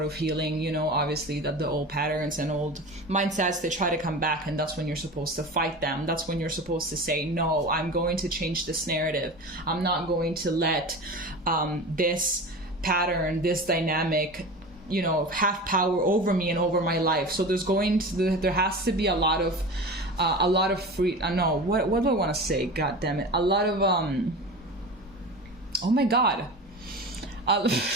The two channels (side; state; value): both; normal; correlation 0.31